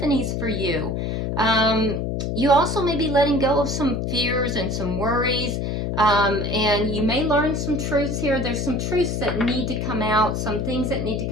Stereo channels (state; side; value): noise; left; hum, 1 dB below the sound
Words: for you. You also may be letting go of some fears and some worries. And you may learn some truths here. There's some truths that need to come out, some things that need to